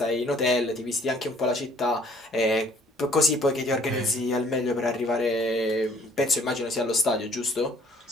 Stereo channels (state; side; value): normal; both; correlation 0.59